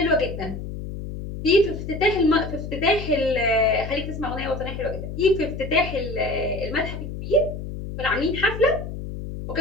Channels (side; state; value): left; noise; hum, 8 dB below the sound